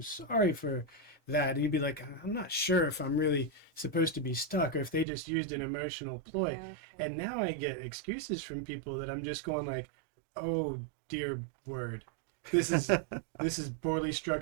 sorry for that." And you'd be like, "I'm not sure if I'm really supposed to be stuck or if they just used an emotional ploy." Okay. And now I get excuses from people that I'm just going like, "Oh, dear word." this is poorly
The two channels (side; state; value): left; drops out; at 5.1 s